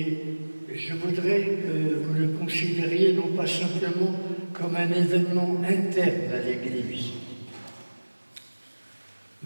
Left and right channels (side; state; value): both; inverted; correlation -1.00